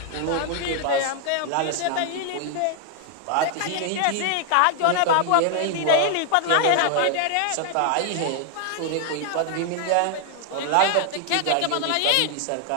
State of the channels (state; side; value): different; both; correlation 0.00